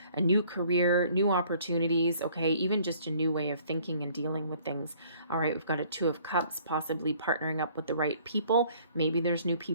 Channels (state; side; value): inverted; both; correlation -0.58